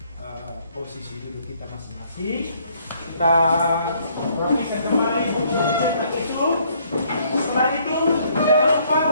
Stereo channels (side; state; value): both; inverted; correlation -0.65